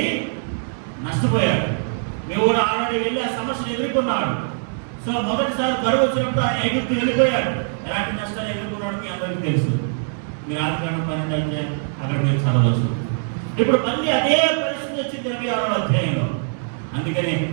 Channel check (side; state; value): left; silent; 64 dB below the other